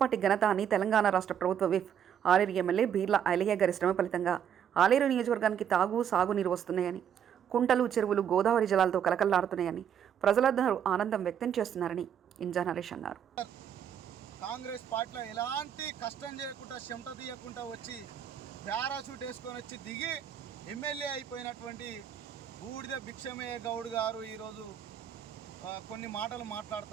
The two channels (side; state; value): left; quieter; 8.9 dB